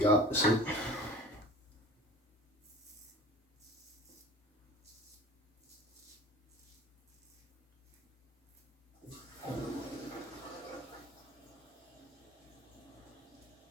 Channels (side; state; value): both; normal; correlation 0.42